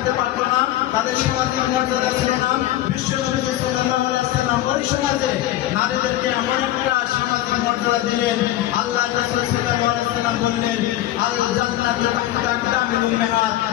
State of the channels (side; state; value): right; quieter; 14.2 dB